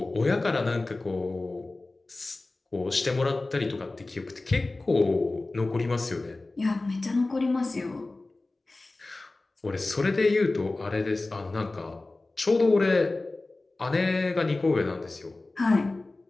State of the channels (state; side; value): quieter; right; 3.1 dB